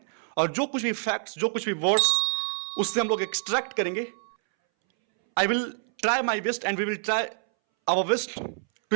और जो कुछ भी फैक्ट्स, जो कुछ भी वर्ड्स उससे हम लोग एक्सट्रैक्ट करेंगे। I will try my best and we will try our best to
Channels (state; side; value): silent; left; 60 dB below the other